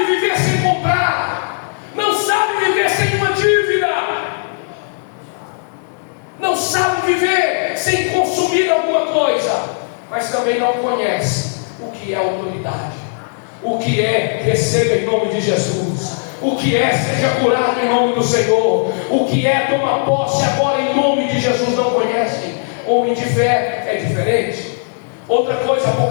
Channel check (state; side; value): silent; right; digital silence